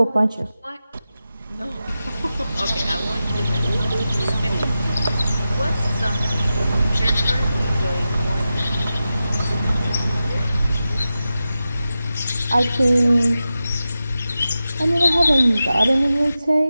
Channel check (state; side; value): inverted; both; correlation -0.92